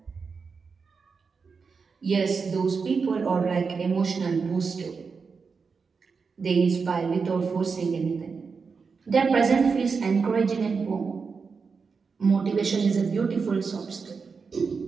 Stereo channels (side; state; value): left; quieter; 5.2 dB